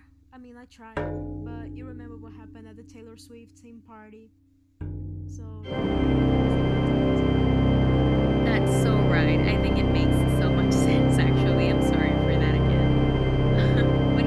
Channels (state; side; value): identical; both; correlation 1.00